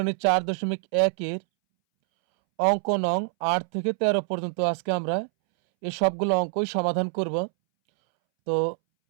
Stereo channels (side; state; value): left; silent; 62 dB below the other